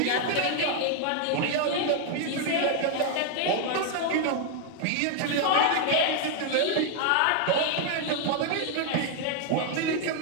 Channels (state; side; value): different; both; correlation 0.00